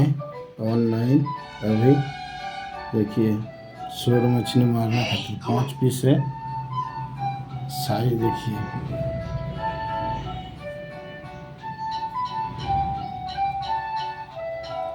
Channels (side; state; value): both; identical; correlation 1.00